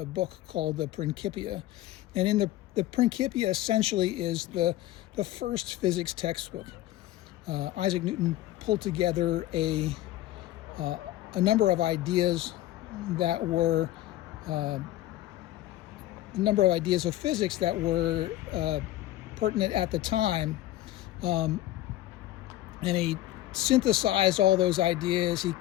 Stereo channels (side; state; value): right; quieter; 15.1 dB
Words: book called the Principia. And in the the Principia essentially is the first physics textbook. Isaac Newton pulled together a number of ideas that were a number of ideas of physics that were pertinent at the time, and he synthesized all those ideas. He